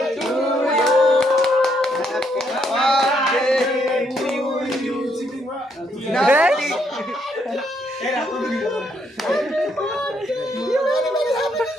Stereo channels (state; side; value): normal; both; correlation 0.74